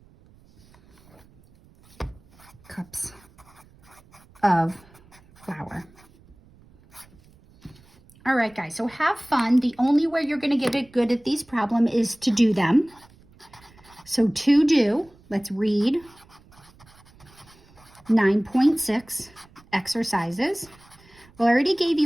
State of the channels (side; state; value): right; noise; rumble, 27 dB below the sound